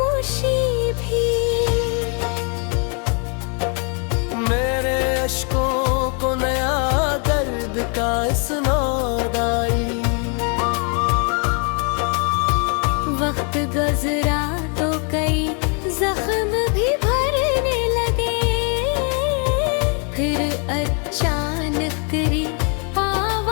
भी मेरे अश्कों को नया दर्द का इसनाद आई। वक्त गुजरा तो कई जख्म भी भरने लगे। फिर अचानक तेरी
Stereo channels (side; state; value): right; quieter; 38.6 dB